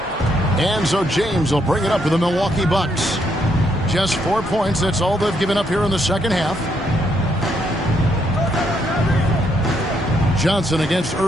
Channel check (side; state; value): both; normal; correlation 0.75